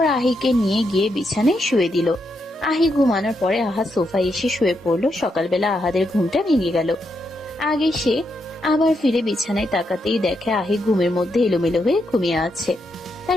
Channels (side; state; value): both; normal; correlation 0.81